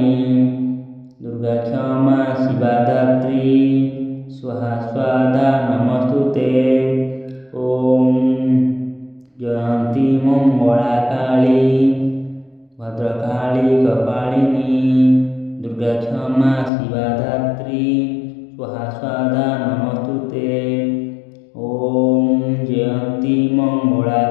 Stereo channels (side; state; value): right; drops out; at 16.7 s